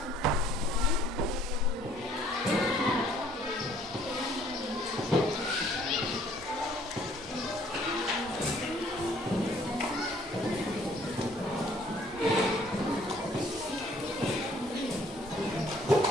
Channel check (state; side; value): normal; both; correlation 0.60